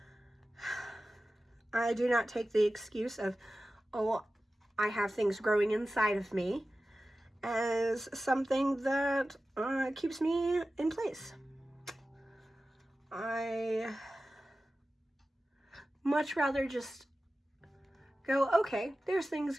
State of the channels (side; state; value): both; normal; correlation 0.95